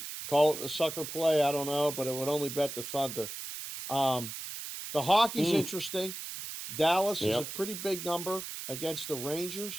call it a sucker play. I don't know, but it would only bet the Thunder. The hockey's interesting. Dallas is a pretty big number against the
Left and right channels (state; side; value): noise; right; hiss, 8 dB below the sound